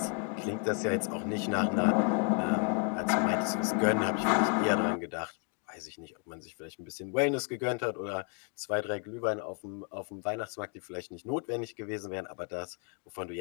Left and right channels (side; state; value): right; quieter; 38.2 dB